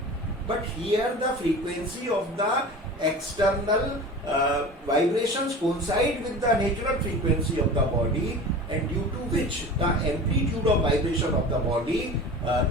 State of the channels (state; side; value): normal; both; correlation 0.35